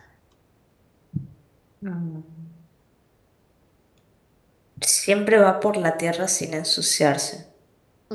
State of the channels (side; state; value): both; identical; correlation 1.00